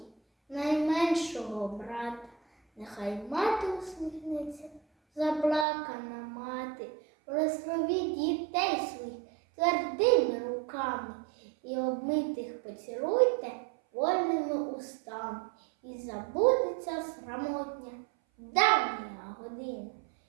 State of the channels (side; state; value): left; drops out; at 5.7 s